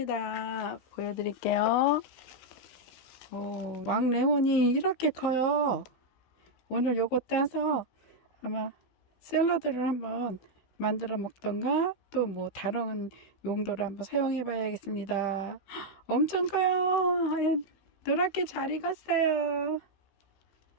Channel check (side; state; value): right; late; 16 ms